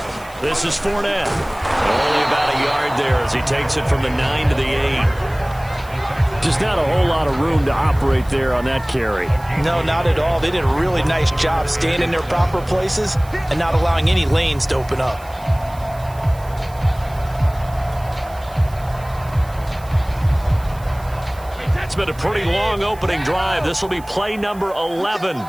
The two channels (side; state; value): right; noise; hiss, 23 dB below the sound